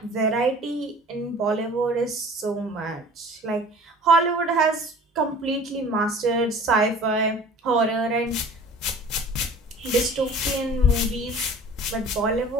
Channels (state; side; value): normal; both; correlation 0.45